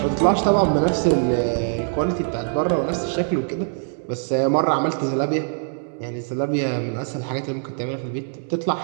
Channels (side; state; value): left; silent; digital silence